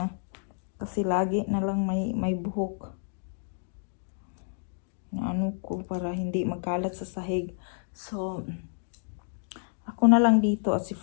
Kasi lagi na lang may buhok. Na ano ko, para hindi magkalat sa sahig. So, ako na lang dito at si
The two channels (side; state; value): right; silent; 58 dB below the other